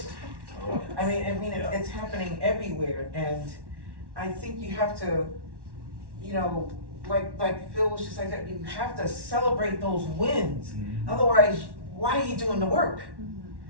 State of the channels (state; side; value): late; left; 1.1 ms